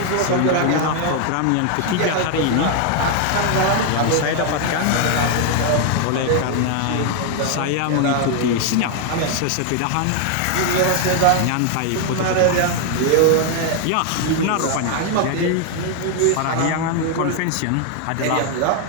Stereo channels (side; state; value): both; different; correlation 0.00